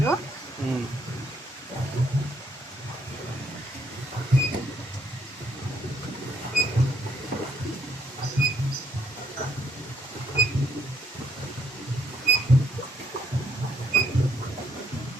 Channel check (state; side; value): normal; both; correlation 0.71